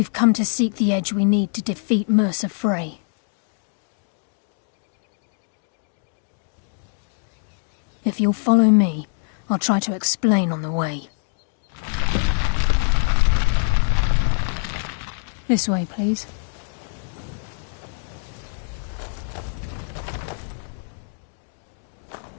come to seek the edge we need to defeat Mercer Frey. If you'll follow me, I'll try to explain on the way. This way, please.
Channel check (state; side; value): silent; right; 61 dB below the other